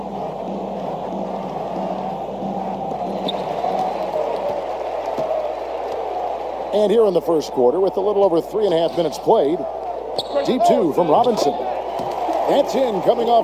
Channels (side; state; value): left; noise; hum, 26 dB below the sound